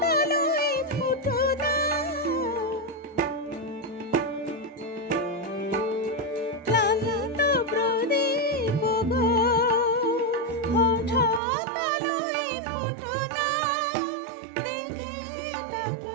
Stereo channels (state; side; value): drops out; left; at 11.4 s